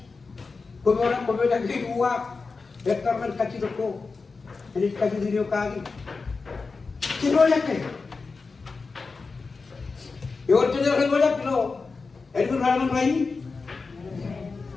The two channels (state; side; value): quieter; right; 4.3 dB